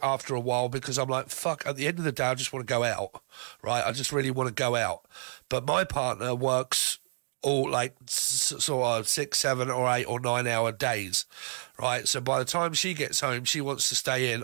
after a while because I'm like, fuck, at the end of the day, I just want to go out, right? I just really want to go out. But my partner works all like sort of 6, 7 or 8 or 9 hour days, right? So by the time she gets home, she wants to stay in,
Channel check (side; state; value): left; silent; digital silence